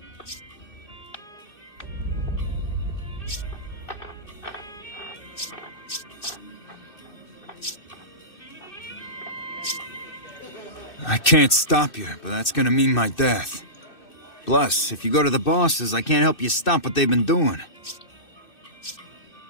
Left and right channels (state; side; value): late; right; 2.6 ms